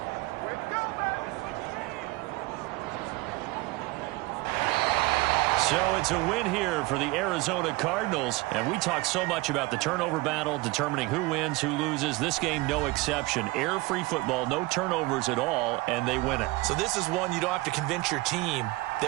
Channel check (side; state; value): left; quieter; 21.8 dB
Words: So it's a win here for the Arizona Cardinals. And we talked so much about the turnover battle, determining who wins, who loses. This game, no exception. Error-free football, no turnovers at all, and they win it. So this is one you don't have to convince your team